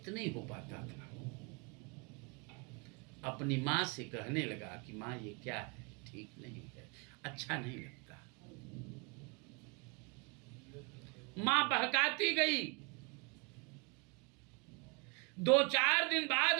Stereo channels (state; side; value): quieter; left; 32.6 dB